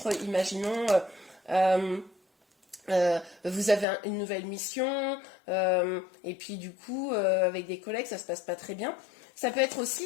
imaginons, vous avez une nouvelle mission, et puis du coup, avec des collègues, ça se passe pas très bien. Ça peut être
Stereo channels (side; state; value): right; drops out; at 3.9 s